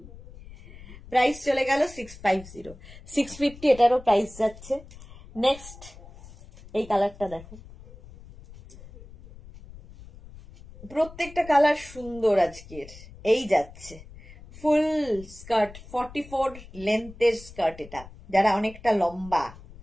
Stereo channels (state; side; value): noise; left; rumble, 18 dB below the sound